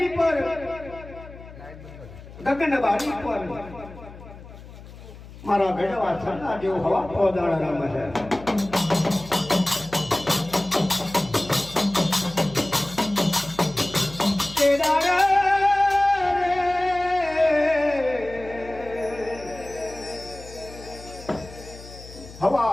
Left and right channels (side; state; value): left; noise; hum, 17 dB below the sound